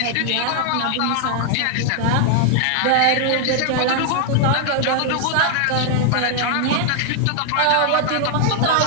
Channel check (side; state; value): both; different; correlation 0.00